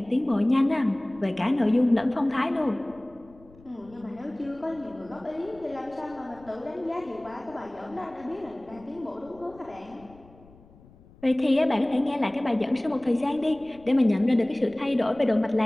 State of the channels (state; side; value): noise; left; rumble, 25 dB below the sound